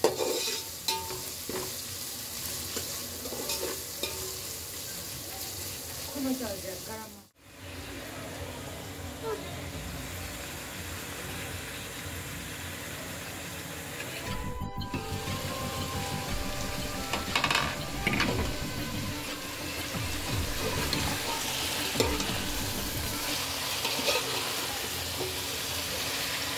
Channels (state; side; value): identical; both; correlation 1.00